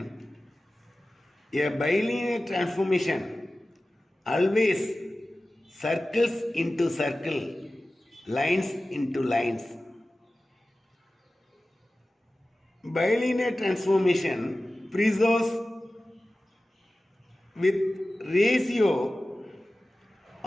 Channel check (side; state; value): both; normal; correlation 0.96